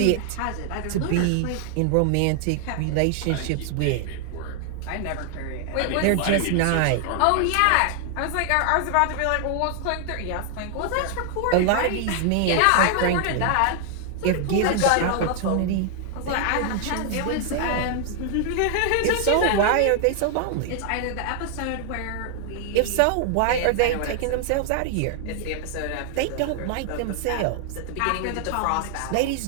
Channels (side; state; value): both; different; correlation 0.00